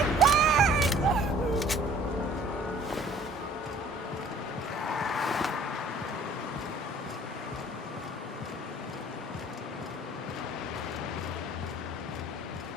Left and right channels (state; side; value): normal; both; correlation 0.52